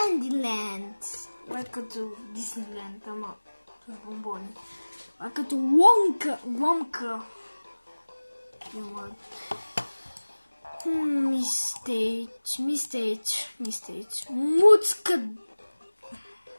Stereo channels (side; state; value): both; inverted; correlation -1.00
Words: Това е като Дисниленд, ама с бомбони. Това е като Ломка. Мистейч. Муцка